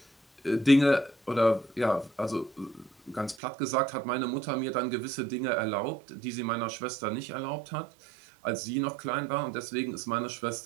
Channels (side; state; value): left; drops out; at 3.4 s